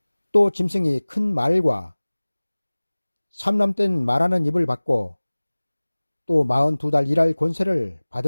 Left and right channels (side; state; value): both; inverted; correlation -1.00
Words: 또 짐승이 큰 말과 삼람된 말하는 입을 받고 또 42달 일할 권세를